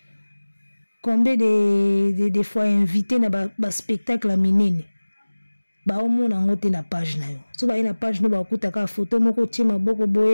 combien de fois invité na ba spectacle minene ba omona ngote na page na yo so baye na page no ba kutaka photo moko tima boko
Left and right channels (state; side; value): inverted; both; correlation -1.00